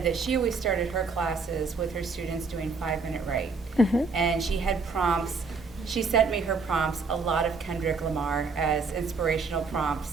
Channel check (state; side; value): quieter; left; 4.4 dB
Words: that she always started her classes with her students doing 5-minute write. And she had prompts. She sent me her prompts, a lot of Kendrick Lamar as inspirational